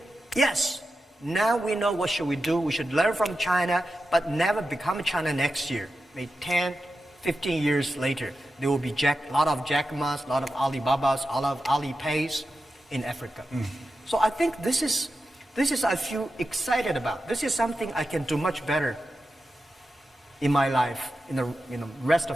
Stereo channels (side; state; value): both; normal; correlation 0.91